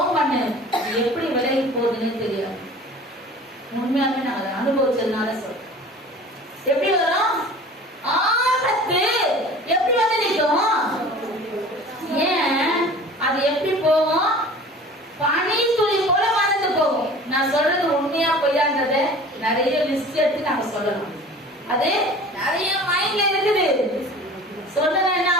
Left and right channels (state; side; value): normal; both; correlation 0.43